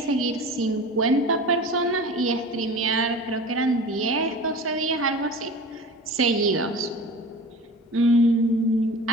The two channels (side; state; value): both; normal; correlation 0.37